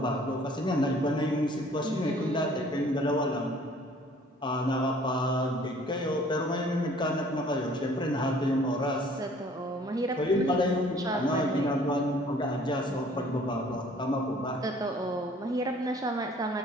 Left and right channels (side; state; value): both; normal; correlation 0.55